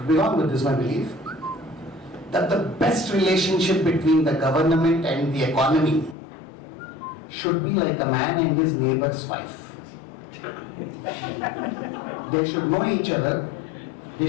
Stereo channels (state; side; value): drops out; right; at 6.2 s